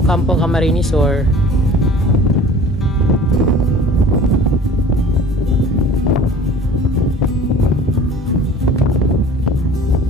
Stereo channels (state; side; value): normal; both; correlation 0.46